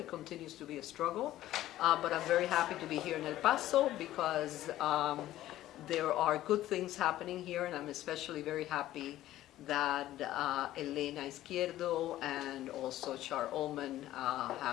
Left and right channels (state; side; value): quieter; right; 14.3 dB